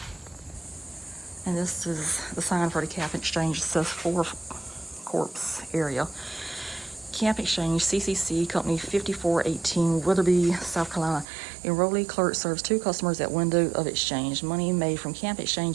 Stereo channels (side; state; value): left; drops out; at 11.2 s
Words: And this is the sign for the Camp Exchange. It says 4 Corps area. Camp Exchange, CCC, Company 5418, Witherby, South Carolina. Enrollee clerk serves 2 customers at window of exchange. Money made from Camp